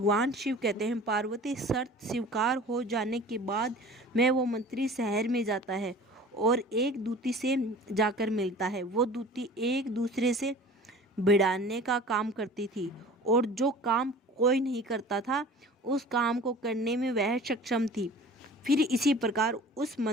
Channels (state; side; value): normal; both; correlation 0.43